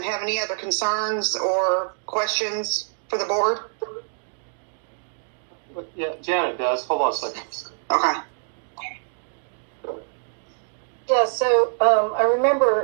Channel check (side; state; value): left; silent; digital silence